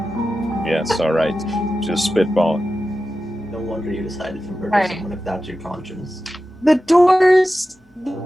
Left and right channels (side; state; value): both; normal; correlation 0.93